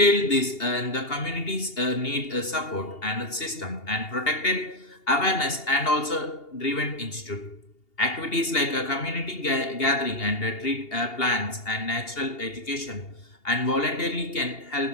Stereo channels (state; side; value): late; right; 2.8 ms